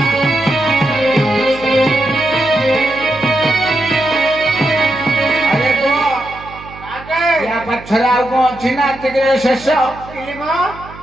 पछरे आउ कौन अच्छी ना शेष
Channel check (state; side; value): noise; right; hum, 17 dB below the sound